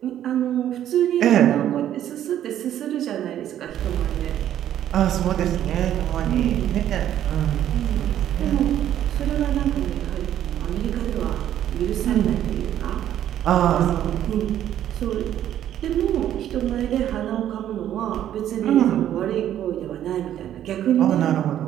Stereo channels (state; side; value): quieter; left; 11.3 dB